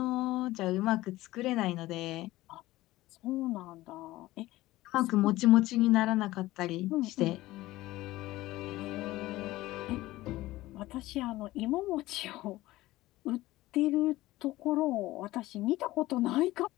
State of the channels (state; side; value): quieter; right; 17.5 dB